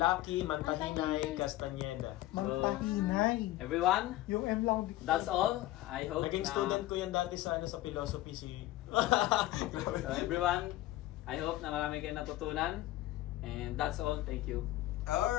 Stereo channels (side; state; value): right; quieter; 15.9 dB